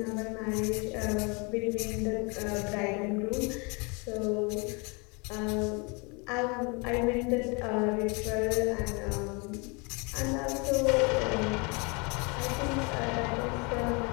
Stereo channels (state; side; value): quieter; right; 30.8 dB